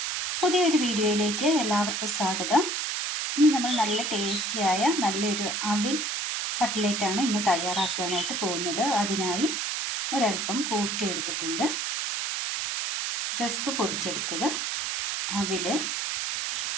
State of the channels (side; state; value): right; noise; hiss, 1 dB below the sound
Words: പുതിയൊരു വീഡിയോയിലേക്ക് എല്ലാവർക്കും സ്വാഗതം. ഇന്ന് നമ്മൾ നല്ല ടേസ്റ്റിയായ നല്ലൊരു അവിൽ കട്ട്ലേറ്റാണ് ഇന്ന് തയ്യാറാക്കുവാനായിട്ട് പോകുന്നത്. അതിനായി ഒരൽപ്പം കൂർക്ക എടുത്തിട്ടുണ്ട്, റസ്ക് പൊടിച്ചെടുത്തത്, അവിൽ,